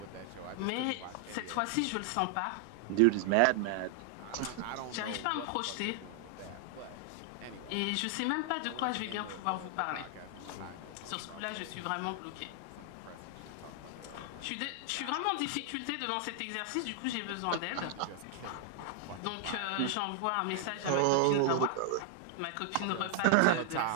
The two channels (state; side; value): different; both; correlation 0.00